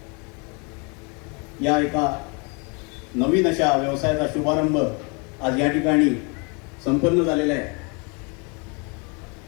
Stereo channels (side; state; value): right; quieter; 32.5 dB